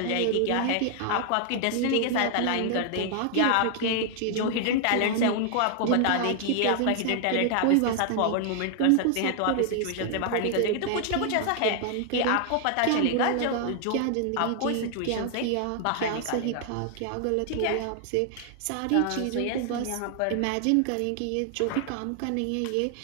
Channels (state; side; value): different; both; correlation 0.00